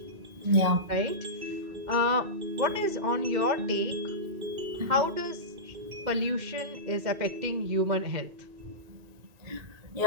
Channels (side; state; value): left; late; 1.9 ms